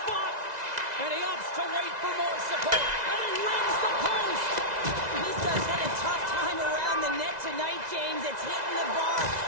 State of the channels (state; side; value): late; left; 2.0 ms